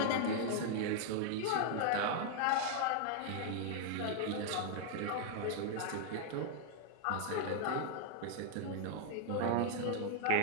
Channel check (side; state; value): both; different; correlation 0.00